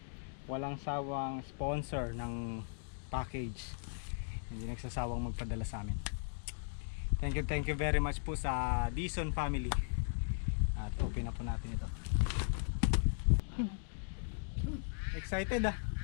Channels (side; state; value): right; silent; digital silence